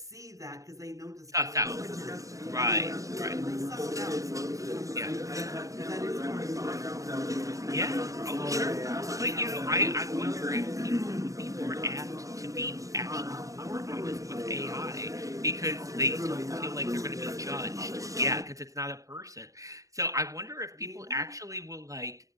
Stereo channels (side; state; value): left; late; 0.16 ms